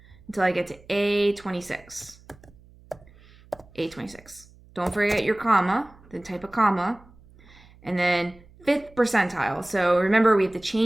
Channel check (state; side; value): noise; right; hum, 26 dB below the sound